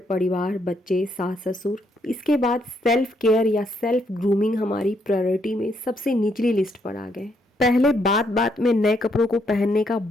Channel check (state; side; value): normal; both; correlation 0.74